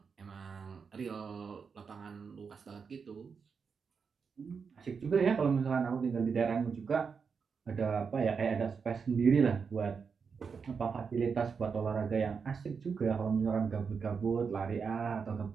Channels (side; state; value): left; quieter; 5.8 dB